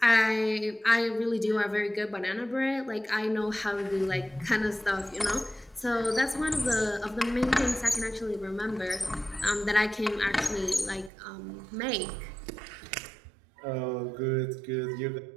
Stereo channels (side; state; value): left; drops out; at 11.1 s